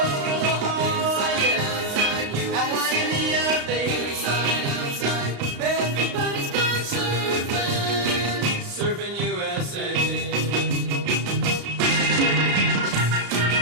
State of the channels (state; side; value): late; left; 35 ms